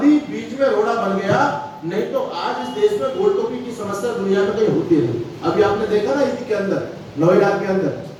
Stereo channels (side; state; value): both; identical; correlation 1.00